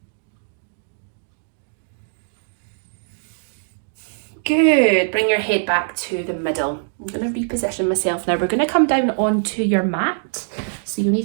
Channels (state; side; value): silent; left; digital silence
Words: Good. Bring your head back to the middle. I'm going to reposition myself now. We're going to come down onto your mat. So you'll